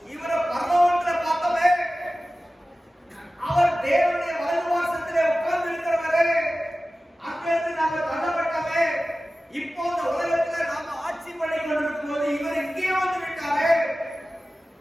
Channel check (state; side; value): normal; both; correlation 0.95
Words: இவரை பரலோகத்துல பார்த்தோமே, அவர் தேவனுடைய வலது வாசத்திலே உட்கார்ந்து இருக்கிறவரே, அங்கிருந்து நாம தள்ளப்பட்டவே, இப்போ இந்த உலகத்துல நாம ஆட்சி பண்ணி கொண்டிருக்கும் போது இவர் இங்கே வந்து விட்டாரே,